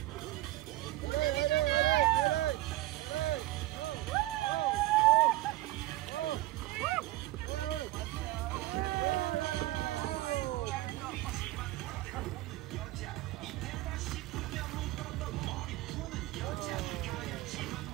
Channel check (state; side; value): quieter; left; 17.0 dB